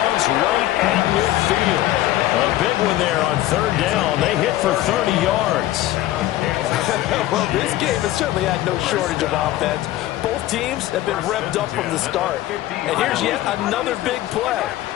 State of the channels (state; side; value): quieter; right; 15.0 dB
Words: right at midfield. A big one there on 3rd down. They hit for 30 yards. Well, this game has certainly had no shortage of offense. Both teams have been revved up from the start. And here's yet another big play.